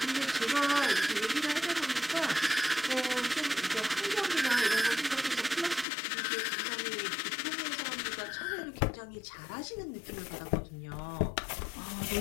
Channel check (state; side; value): drops out; right; at 5.9 s